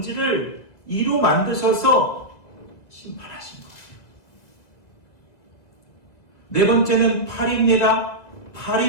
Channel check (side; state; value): right; late; 2.0 ms